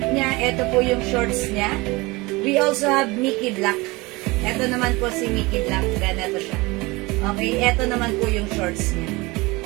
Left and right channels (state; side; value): quieter; left; 23.2 dB